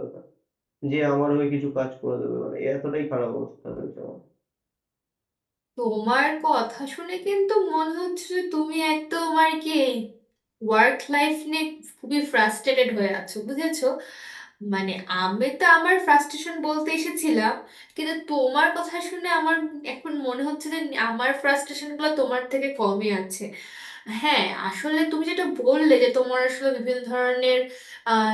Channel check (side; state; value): both; identical; correlation 1.00